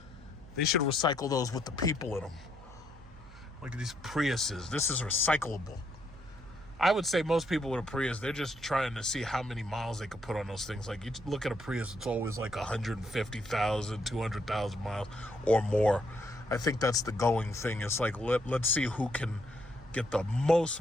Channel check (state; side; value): noise; right; hum, 20 dB below the sound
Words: They should recycle those with the people in them. Look at these Priuses. This is recyclable. I would say most people with a Prius, they're just trying to see how many miles they could put on those things. Like, you look at a Prius, it's always like 150,000, 200,000 miles or more. I think that's the going thing. It's like, let's see who can get the most